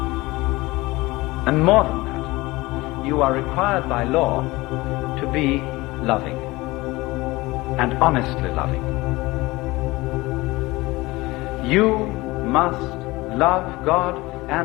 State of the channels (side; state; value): right; quieter; 20.9 dB